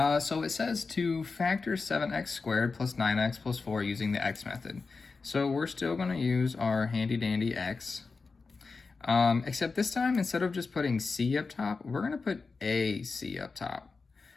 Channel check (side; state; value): right; quieter; 4.4 dB